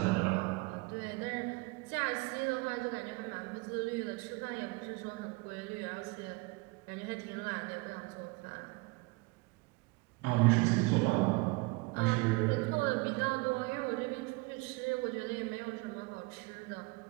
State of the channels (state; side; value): quieter; left; 25.6 dB